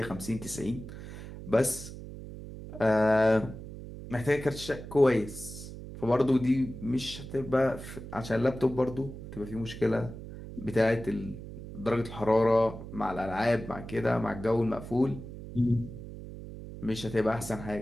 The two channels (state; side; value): noise; right; hum, 12 dB below the sound